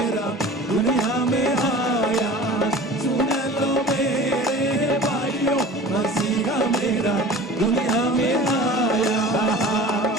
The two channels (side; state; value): both; normal; correlation 0.40